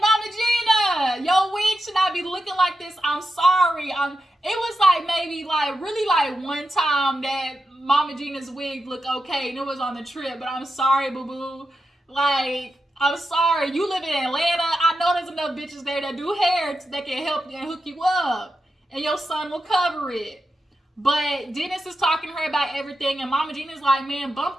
Mama Gina, your wig should not be looking like this. I'm sorry. It was like maybe like really like one time that Mama Gina's wig looked okay, and it was on the trip. But I'm sorry, boo boo. Like, I'm sorry. You live in Atlanta. I know there's enough bitches there that do hair that can help you and hook you up, and your son will cover it. But Dennis is talking to her about everything, and Mama Gina's like, man, bump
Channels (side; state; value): both; normal; correlation 0.89